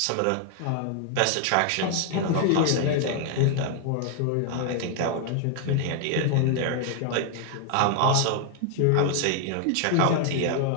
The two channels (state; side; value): different; both; correlation 0.00